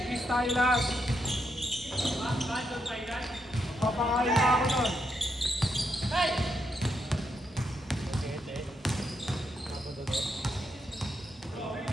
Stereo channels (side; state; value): both; normal; correlation 0.80